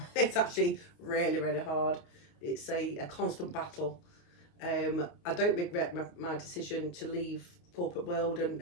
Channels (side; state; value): right; late; 29 ms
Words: it's actually really, really hard. It's a constant battle. I don't regret my decision to leave corporate world and